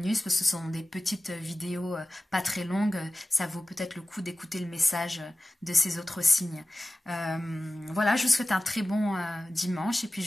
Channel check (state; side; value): normal; both; correlation 0.96